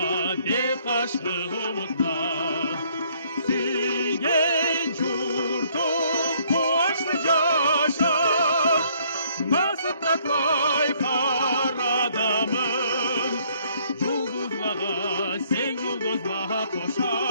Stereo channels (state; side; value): inverted; both; correlation -0.65